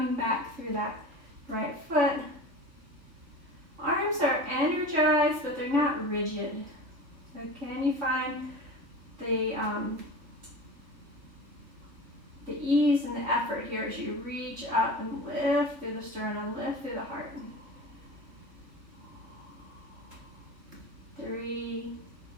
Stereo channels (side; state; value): left; late; 3.6 ms